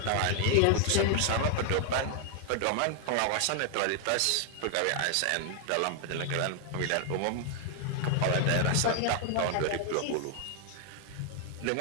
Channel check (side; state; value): both; different; correlation 0.00